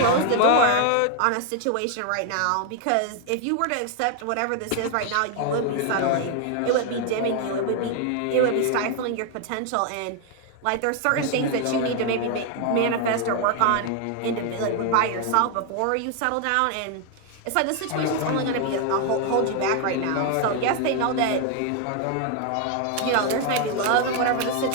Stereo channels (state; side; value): different; both; correlation 0.00